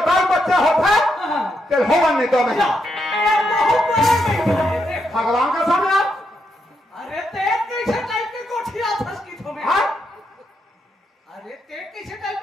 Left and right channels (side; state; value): both; normal; correlation 0.81